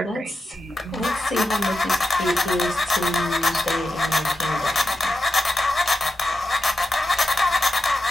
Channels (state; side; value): normal; both; correlation 0.89